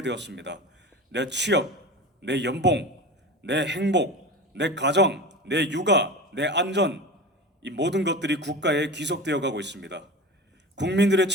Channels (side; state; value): both; normal; correlation 0.31